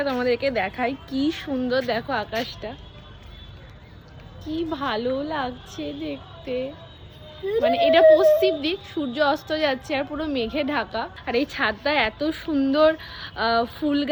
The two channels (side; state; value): both; identical; correlation 1.00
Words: তোমাদেরকে দেখাই, কি সুন্দর দেখো আকাশটা, কি ভালো লাগছে দেখতে। মানে এটা পশ্চিম দিক, সূর্য অস্ত যাচ্ছে আর পুরো মেঘে ঢাকা। আর এই ছাদটা এত সুন্দর ফুল